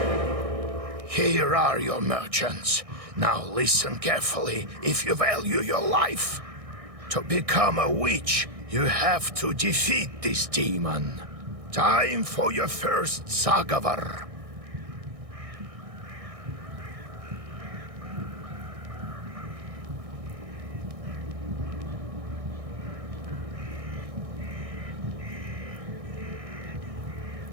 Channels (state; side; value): late; left; 1.6 ms